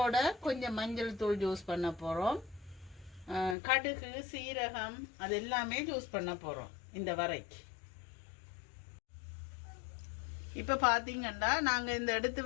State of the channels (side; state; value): right; drops out; at 3.6 s